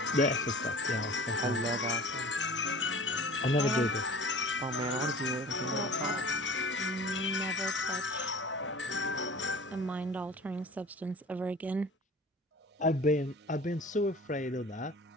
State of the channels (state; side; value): normal; both; correlation 0.43